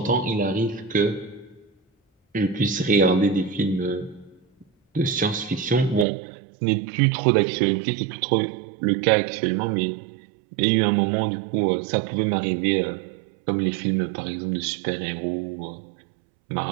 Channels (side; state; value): left; drops out; at 6.1 s